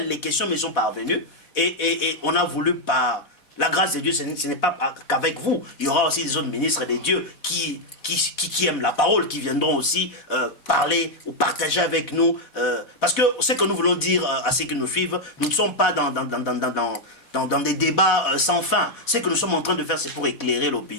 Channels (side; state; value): right; late; 4.1 ms